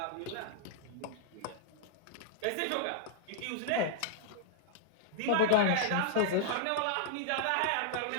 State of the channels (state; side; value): different; both; correlation -0.01